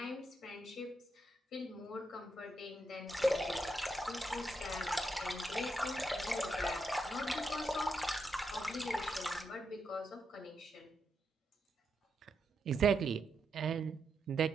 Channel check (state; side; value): normal; both; correlation 0.82